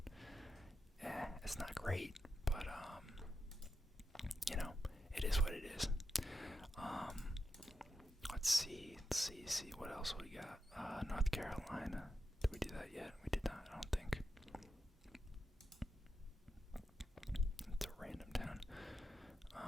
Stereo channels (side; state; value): both; normal; correlation 0.87